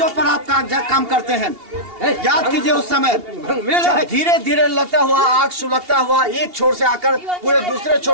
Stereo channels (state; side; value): late; left; 2.8 ms